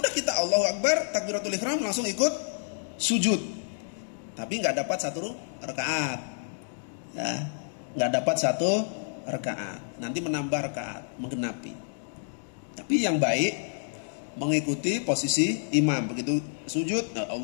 kita Allahu Akbar, takbiratul ihram langsung ikut sujud. Tapi nggak dapat satu rakaat. Ya, nggak dapat satu rakaat. Nanti menambah rakaat, menggenapi. Tapi yang baik mengikuti posisi imam. Begitu sujud,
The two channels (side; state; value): right; silent; digital silence